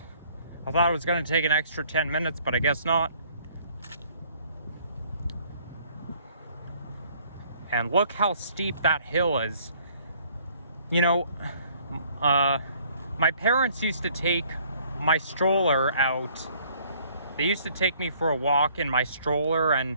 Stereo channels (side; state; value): both; inverted; correlation -0.60